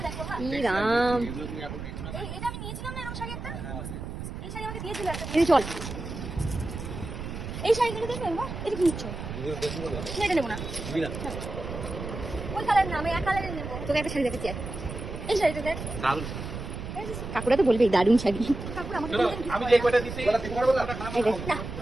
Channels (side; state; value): right; noise; rumble, 8 dB below the sound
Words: দেখো। হ্যাঁ। ই রাম, এটা আমি নিয়েছিলাম না, এরকম শাড়ি একটা? এই শাড়ি আমাকে দিয়েছিল একটা। দিদি চল। এই শাড়িগুলো দেখবেন না? এটা কি নিচ্ছ? না, এটা নেবো না। ওই কালার না, আমি এক কালারের নেবো। তোকে একটা শাড়ি দেখাচ্ছি আর। এই শাড়িটা দেখ। কাকুরা তো বলবে দারুণ শাড়ি। কাকুর আমাকে বলতেন কি? আমি যে কয়টা দিছি এই দেখ, না,